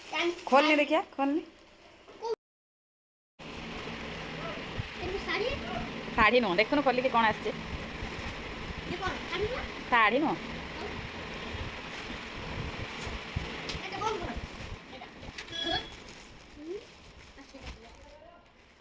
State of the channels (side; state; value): both; identical; correlation 1.00